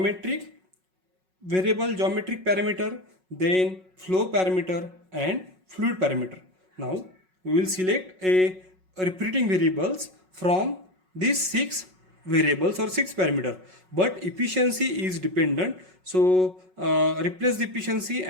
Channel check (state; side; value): late; left; 5.4 ms